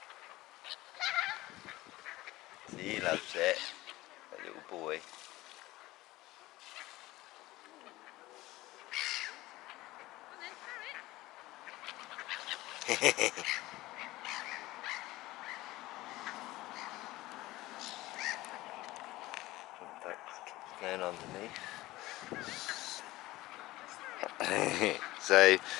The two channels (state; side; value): quieter; right; 18.3 dB